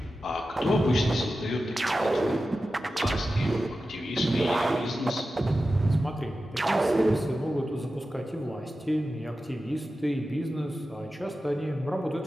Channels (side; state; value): both; normal; correlation 0.93